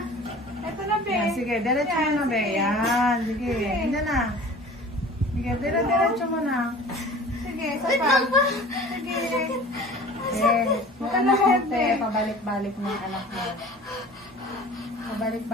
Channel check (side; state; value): both; normal; correlation 0.43